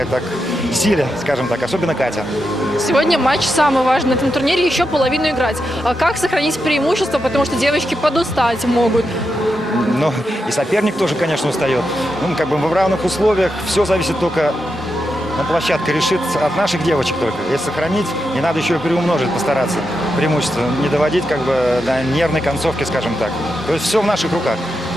так, силе, скажем так, особенно Катя. Сегодня матч самый важный на этом турнире, еще половину играть. А как сохранить преимущество, потому что девочки подустать могут? Ну, и соперник тоже, конечно, устает. Ну, как бы в равных условиях все зависит только, площадка решит от наших девочек только. Если сохранить, не надо еще и приумножить, постараться преимущество, не доводить как бы до нервной концовки, скажем так. То есть все в наших руках.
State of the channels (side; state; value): both; normal; correlation 0.86